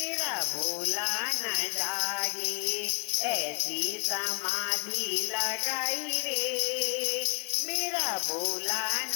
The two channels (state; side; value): quieter; right; 31.2 dB